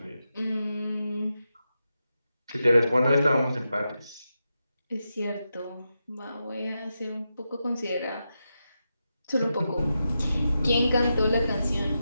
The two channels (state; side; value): inverted; both; correlation -0.88